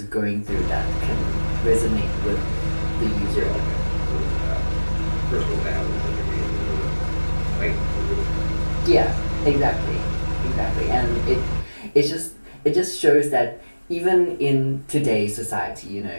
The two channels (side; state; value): both; inverted; correlation -1.00